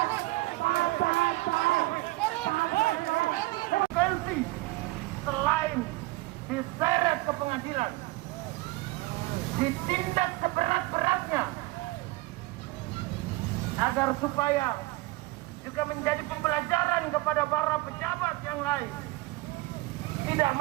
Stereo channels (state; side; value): quieter; left; 20.7 dB